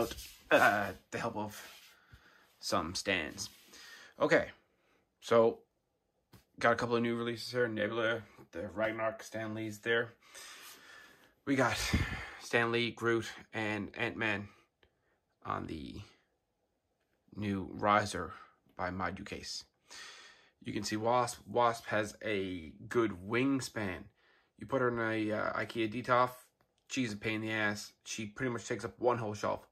the help of some stands. Okay, so got a couple of new releases here. Nebula, the Ragnarok, Stan Lee's there. We got Stan Lee, Groot, and Ant-Man on the new Riser by Module Case. You can see Wasp. Wasp has a good wingspan. You put her in a IKEA Detolf, she's a pain in the ass. She pretty much takes up one whole shelf,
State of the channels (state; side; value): identical; both; correlation 1.00